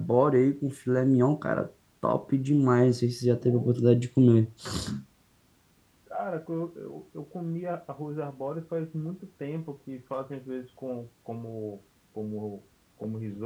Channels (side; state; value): both; identical; correlation 1.00